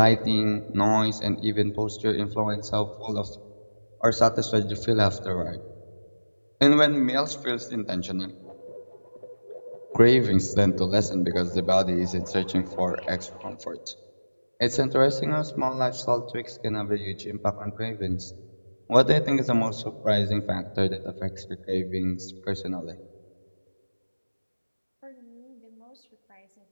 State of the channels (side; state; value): both; inverted; correlation -1.00